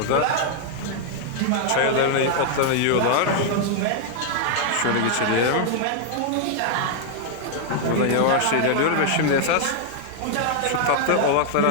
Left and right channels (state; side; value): different; both; correlation 0.00